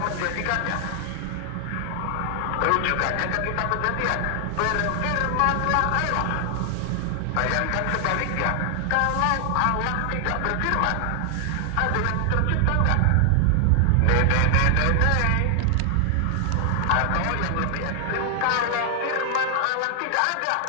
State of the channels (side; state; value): both; different; correlation 0.00